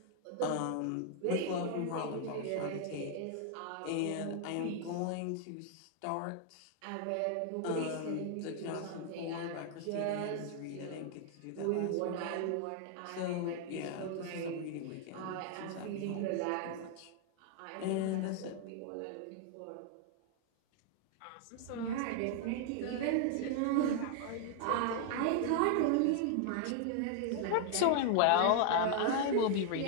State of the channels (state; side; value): different; both; correlation 0.00